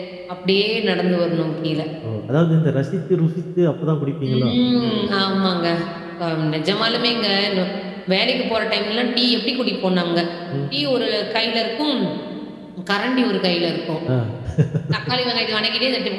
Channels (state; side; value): identical; both; correlation 1.00